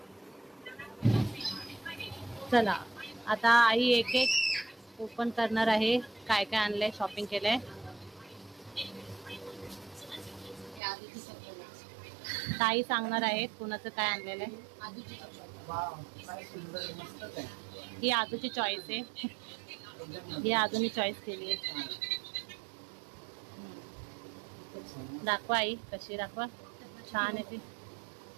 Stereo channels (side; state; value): left; drops out; at 10.8 s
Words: चला आता आई एक एक ओपन करणार आहे काय काय आणलंय, शॉपिंग केलंय. ताई सांगणार आहेत कुणाचं काय आणलेलं आहे. ही आदूची चॉईस आहे. ही आदूनी चॉईस केली आहे. दाखवा आई कशी, दाखवा. छान आहे ती.